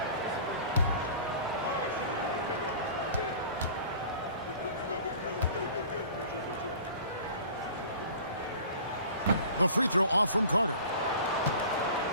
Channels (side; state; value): both; inverted; correlation -0.43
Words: The free throw off from Carter.